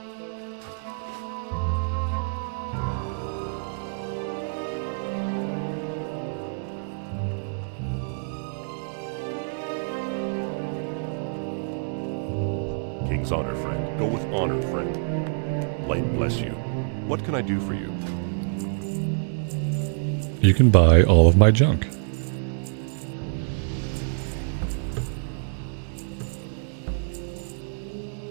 King's honor, friend. Go with honor, friend. Light bless you. What can I do for you? You can buy all of my junk.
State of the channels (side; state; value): left; silent; digital silence